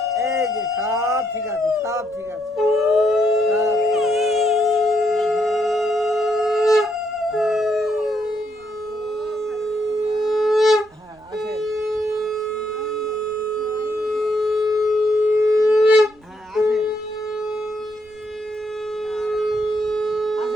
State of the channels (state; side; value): noise; right; rumble, 30 dB below the sound